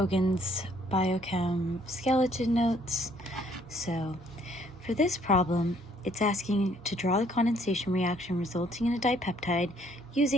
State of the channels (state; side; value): normal; both; correlation 0.63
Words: Biochem Skeleton Notes. So for this problem, it's asking to draw the condensation reaction resulting in a dipeptide